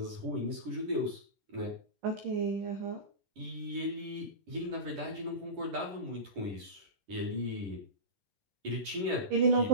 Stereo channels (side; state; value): left; late; 10 ms